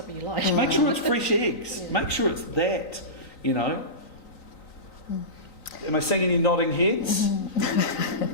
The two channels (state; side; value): late; right; 3.9 ms